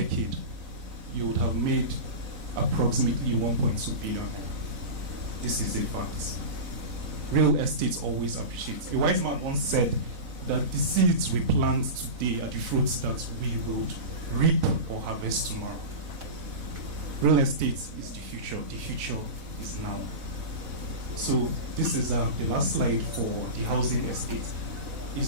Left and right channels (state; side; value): late; left; 4.0 ms